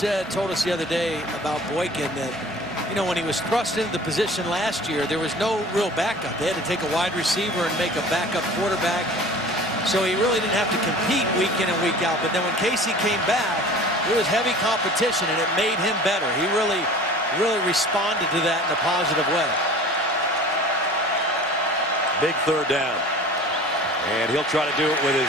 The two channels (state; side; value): normal; both; correlation 0.43